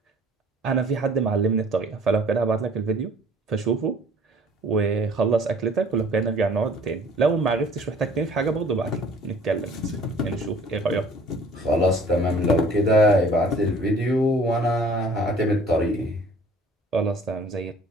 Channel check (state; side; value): normal; both; correlation 0.53